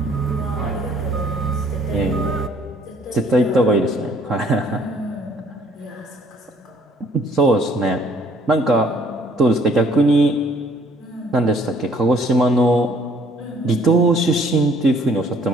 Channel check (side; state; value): both; normal; correlation 0.60